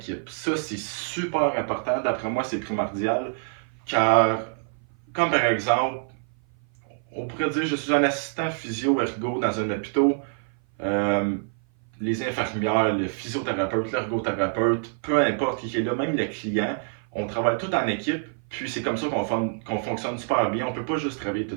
Ça, c'est super important. D'après moi, c'est primordial. Car, comme par exemple, on pourrait dire je suis un assistant physio-ergo dans un hôpital. Euh, les infirmières, le physiothérapeute, l'ergothérapeute, peu importe qui est là, même le client, on travaille tout en équipe. Puis c'est comme ça qu'on fonctionne super bien. On ne peut pas juste travailler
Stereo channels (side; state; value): left; silent; 56 dB below the other